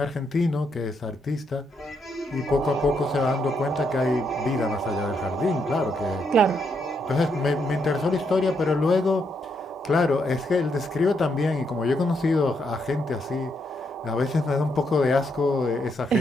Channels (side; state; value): both; normal; correlation 0.78